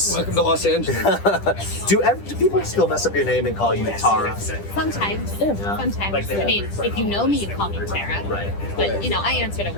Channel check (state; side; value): late; right; 10 ms